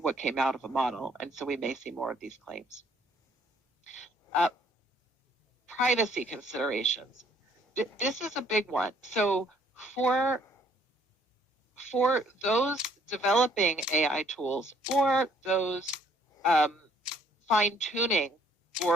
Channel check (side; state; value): both; normal; correlation 0.63